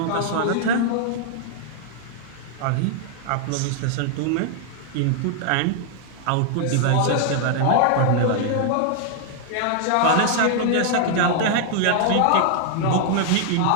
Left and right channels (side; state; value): both; different; correlation 0.00